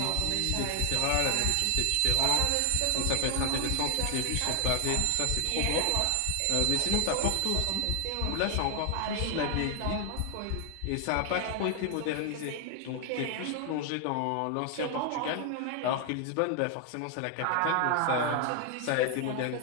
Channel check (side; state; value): both; different; correlation 0.00